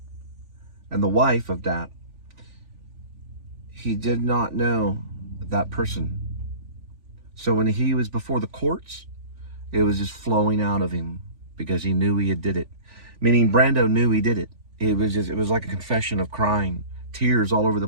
and the wife of Dat, he did not know that person. So when he was before the courts, it was just flowing out of him because he knew he had did it. Meaning Brando knew he did it. It was like a confession of crying, tears all over the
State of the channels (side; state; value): left; late; 3.4 ms